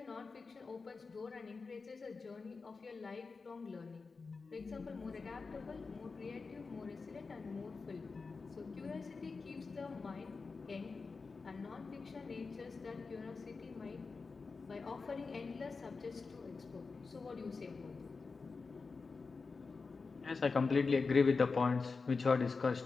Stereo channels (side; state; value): right; quieter; 4.4 dB